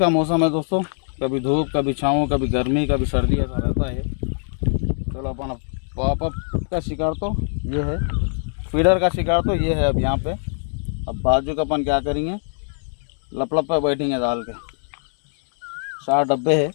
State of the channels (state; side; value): silent; right; digital silence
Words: मौसम है दोस्तों, कभी धूप, कभी छाँव, कभी गर्मी, कभी सर्दी, ऐसा रहता है। चलो अपन पॉपअप का शिकार तो ये है, फीडर का शिकार तो ये है। अब यहाँ पे अब बाजू का अपन क्या करेंगे, लपलप पे बैठेंगे डाल के। 4 डब्बे है।